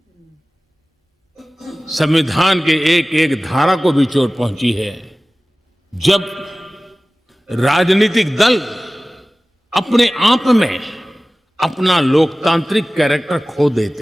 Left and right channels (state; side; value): normal; both; correlation 0.97